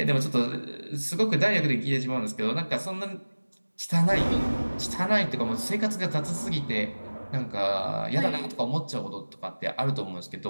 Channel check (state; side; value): inverted; both; correlation -1.00